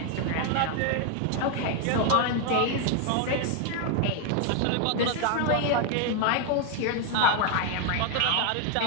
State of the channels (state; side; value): different; both; correlation 0.01